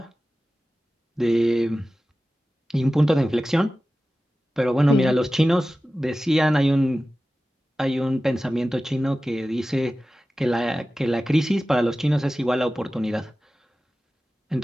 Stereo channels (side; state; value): both; normal; correlation 0.95